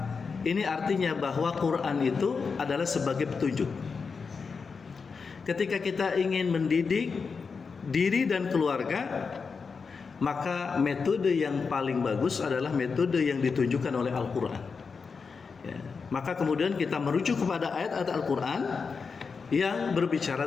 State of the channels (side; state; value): right; quieter; 5.2 dB